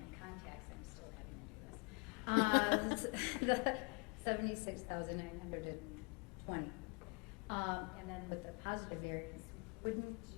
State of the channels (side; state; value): right; quieter; 33.8 dB